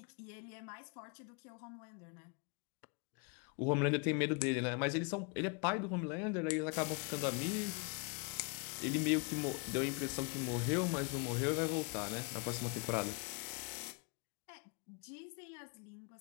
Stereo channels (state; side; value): quieter; right; 34.1 dB